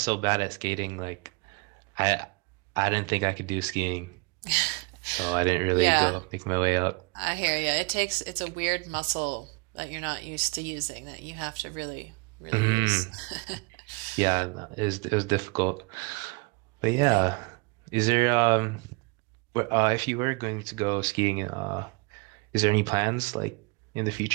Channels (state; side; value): quieter; left; 29.8 dB